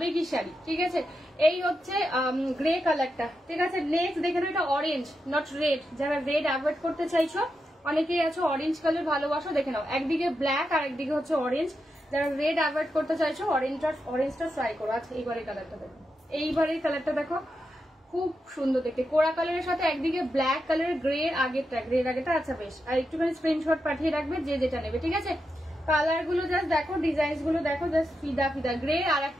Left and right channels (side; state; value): both; normal; correlation 0.87